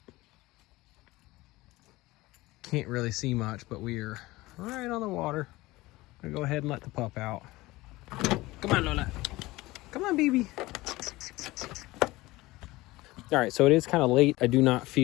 Can't really see much, but we're right on the water. I'm gonna go ahead and let the pup out. Come on, Lola. Come on, baby. All right, so it is kind of late. I do not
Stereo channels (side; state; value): right; quieter; 19.7 dB